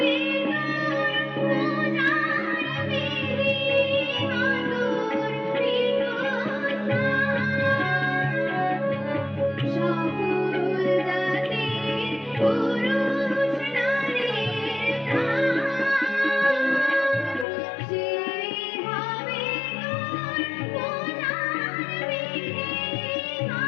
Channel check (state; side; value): drops out; right; at 17.4 s